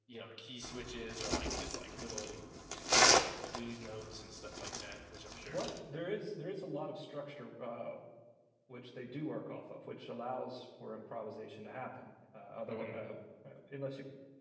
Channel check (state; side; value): identical; both; correlation 1.00